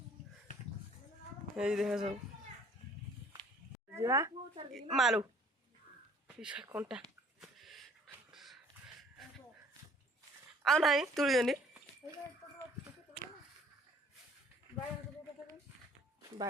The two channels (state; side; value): normal; both; correlation 0.56